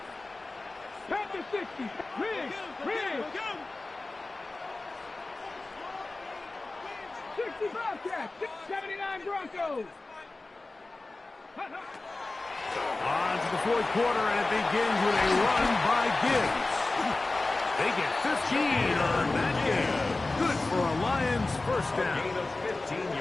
Panther 60. Rig. 60 Bobcats. 79 Broncos. On to the 4th quarter, and it begins with a run by Gibbs. They get 15 on that game. Good for a Lions first down. Gain of 15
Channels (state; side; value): quieter; right; 3.2 dB